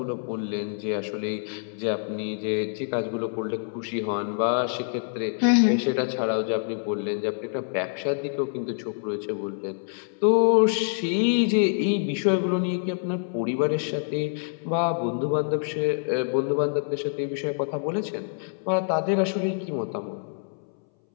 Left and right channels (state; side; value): silent; right; 61 dB below the other